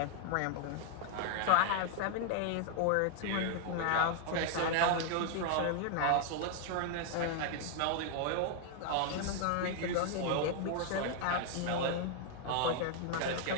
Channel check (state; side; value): different; both; correlation 0.00